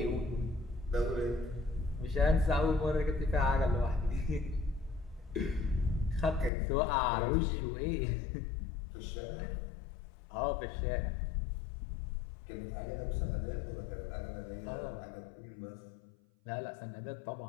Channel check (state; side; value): drops out; right; at 6.5 s